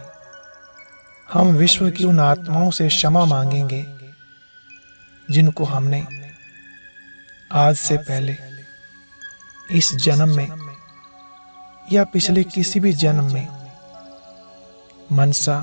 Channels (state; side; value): inverted; both; correlation -1.00